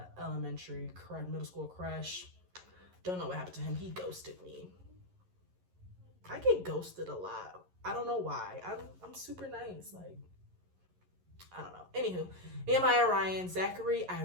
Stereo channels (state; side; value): late; left; 11 ms